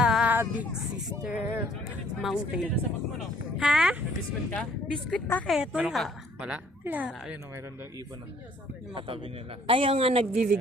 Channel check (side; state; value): both; normal; correlation 0.60